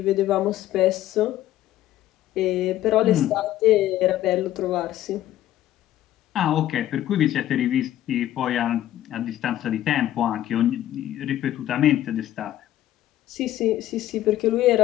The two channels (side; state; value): right; quieter; 13.2 dB